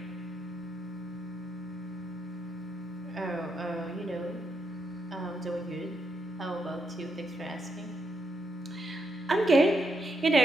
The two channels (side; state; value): both; normal; correlation 0.81